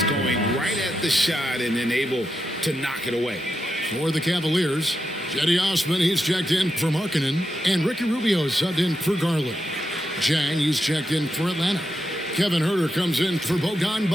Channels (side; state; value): both; normal; correlation 0.86